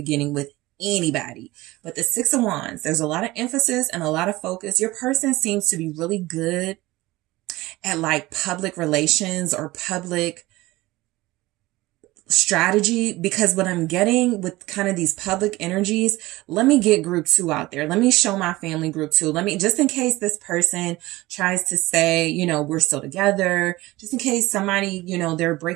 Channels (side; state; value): left; quieter; 19.2 dB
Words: with anybody. But the Six of Wands, there's a lot of emphasis and a lot of focus. Your person seems to be really good at like public relations or public strategy, because what I'm getting with kind of these public energies, let me get group 2 out there. Let me show my family group 2. Let me, just in case this person tries to say, you know, we're still together, just in case somebody, you know, they're